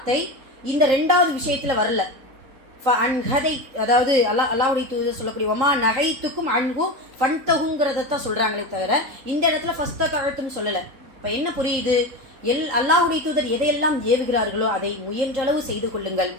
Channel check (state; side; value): late; left; 3.8 ms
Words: இந்த 2வது விஷயத்துல வரல. அதாவது அல்லாஹ்வுடைய தூதர் சொல்லக்கூடிய வமா நஹைத்துக்கும் அன்ஹு ஃபன்தஹுங்கிறத தான் சொல்றாங்களே தவிர இந்த இடத்துல ஃபஸ்ததஅதும் சொல்லல. இப்ப என்ன புரியுது, அல்லாஹ்வுடைய தூதர் எதையெல்லாம் ஏவுகிறார்களோ அதை முயன்றளவு செய்து கொள்ளுங்கள்.